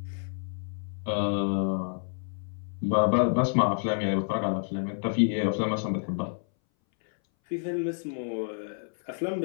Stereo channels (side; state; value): right; silent; 59 dB below the other